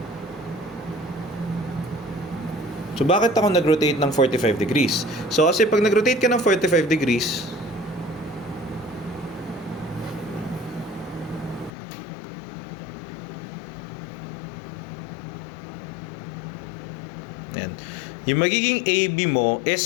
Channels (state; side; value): drops out; right; at 11.7 s